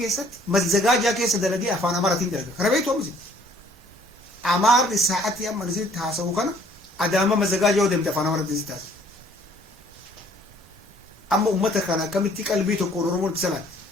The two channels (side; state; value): both; normal; correlation 0.58